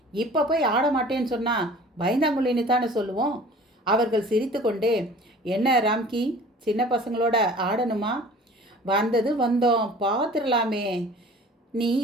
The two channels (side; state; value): both; normal; correlation 0.46